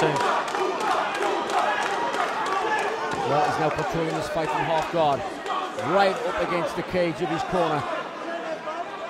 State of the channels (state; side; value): identical; both; correlation 1.00